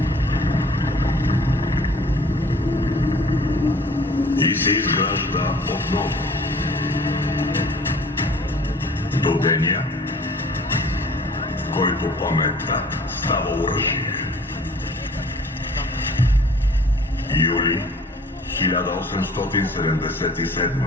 И се изгражда отново. До деня, в който паметта става оръжие. Юли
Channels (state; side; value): normal; both; correlation 0.52